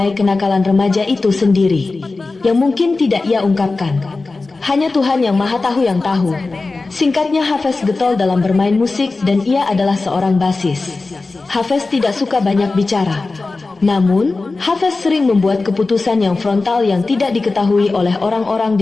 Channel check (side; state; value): right; quieter; 3.6 dB